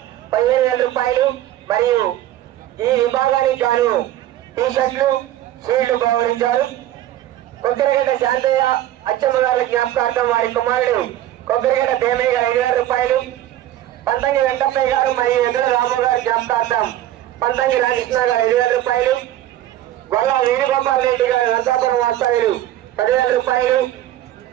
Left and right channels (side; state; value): left; quieter; 13.3 dB